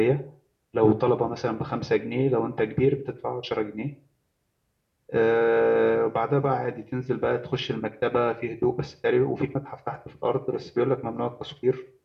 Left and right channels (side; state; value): both; identical; correlation 1.00